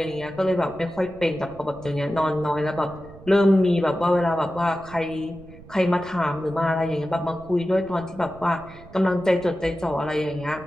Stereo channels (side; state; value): right; noise; rumble, 20 dB below the sound